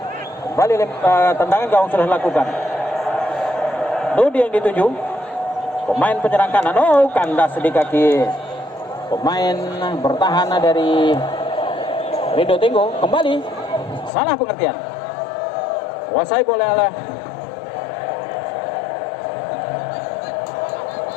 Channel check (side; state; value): right; drops out; at 14.1 s